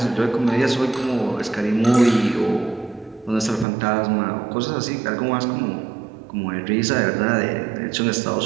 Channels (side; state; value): left; drops out; at 3.7 s